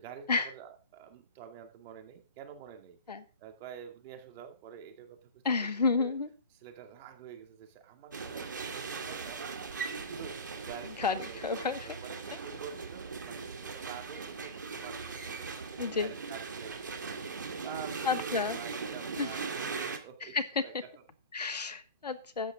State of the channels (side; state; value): both; inverted; correlation -0.31